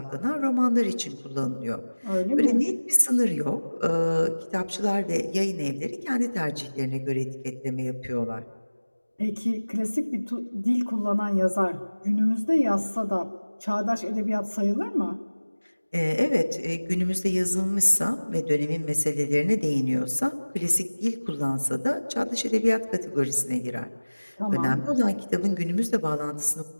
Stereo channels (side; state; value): both; inverted; correlation -1.00